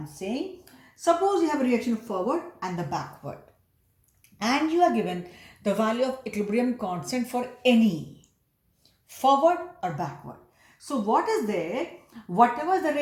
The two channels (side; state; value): both; identical; correlation 1.00